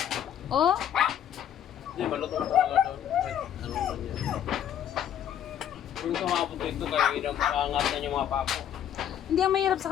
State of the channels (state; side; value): quieter; right; 10.0 dB